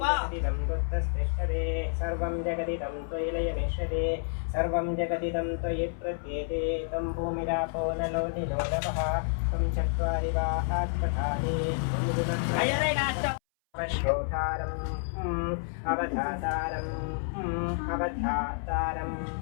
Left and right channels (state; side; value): silent; right; 58 dB below the other